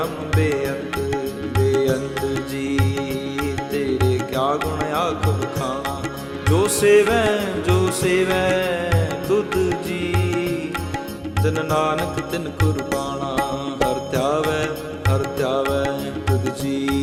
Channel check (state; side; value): identical; both; correlation 1.00